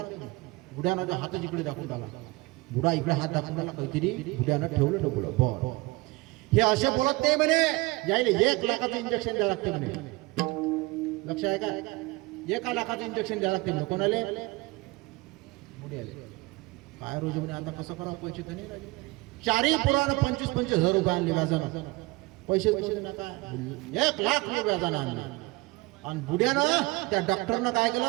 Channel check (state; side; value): quieter; left; 23.0 dB